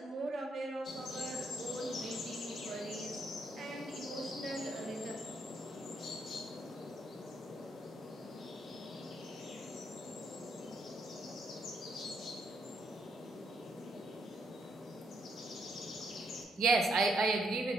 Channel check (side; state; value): both; normal; correlation 0.75